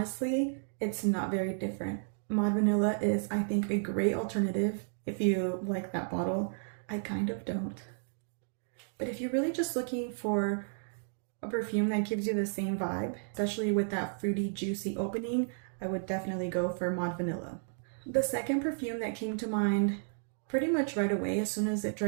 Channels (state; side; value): silent; left; digital silence